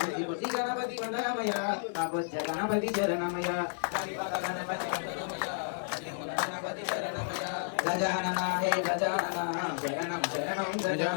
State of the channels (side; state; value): right; silent; 56 dB below the other